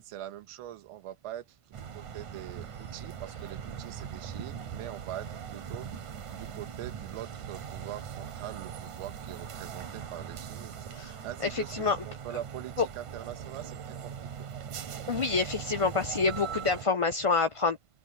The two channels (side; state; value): left; late; 1.5 ms